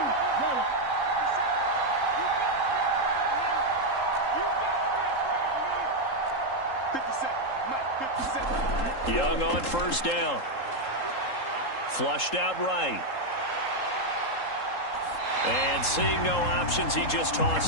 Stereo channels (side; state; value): right; late; 3.8 ms